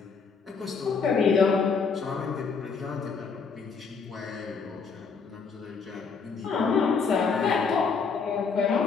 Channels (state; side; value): quieter; right; 5.3 dB